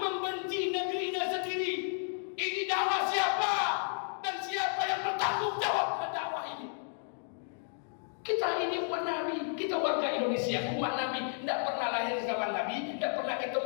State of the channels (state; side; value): silent; right; 56 dB below the other